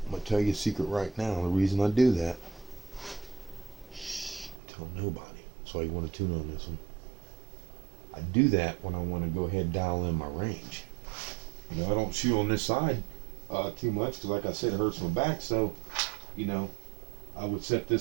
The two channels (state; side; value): drops out; left; at 4.6 s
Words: I'm going to tell you a secret right now, the reason I do that. Tell nobody. That's why you want to tune on this one. I do that when I want to go ahead and dial in my range. I don't shoot on this side too much because, like I said, it hurts my back. So, I would set